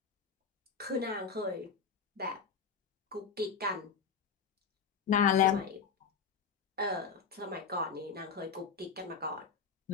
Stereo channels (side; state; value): right; quieter; 5.9 dB